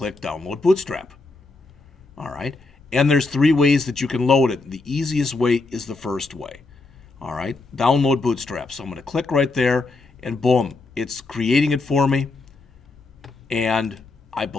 Download Bootstrap. All right? And there's three ways that you can load it. The easiest way is the first way. All right, download Bootstrap. So I'm going to click right there, and boom, it's creating it for me. And I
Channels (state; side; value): quieter; right; 3.5 dB